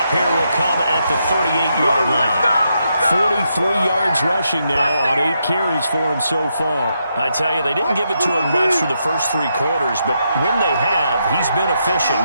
here will come at the 38-yard line. 43 yards rushing now on 8 carries for him so far. I tell you, they didn't give it to him much through the first 3 quarters, but when they have, he's been efficient.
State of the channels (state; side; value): inverted; both; correlation -0.81